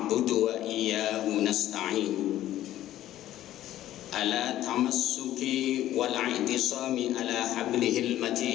wa iyyahu nasta'in. Ala tamassuki wal i'tisami ala hablihil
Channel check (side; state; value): right; quieter; 13.4 dB